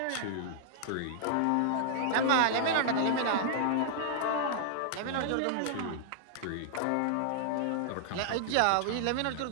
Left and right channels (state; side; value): different; both; correlation -0.01